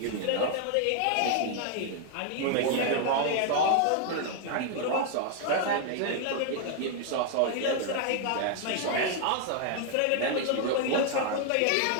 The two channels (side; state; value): both; different; correlation 0.00